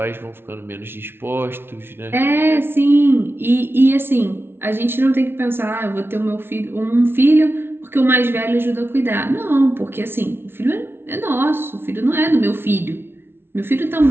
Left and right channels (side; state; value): left; late; 0.11 ms